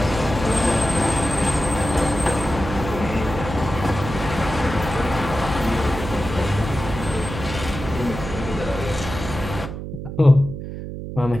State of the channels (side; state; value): right; noise; hum, 8 dB below the sound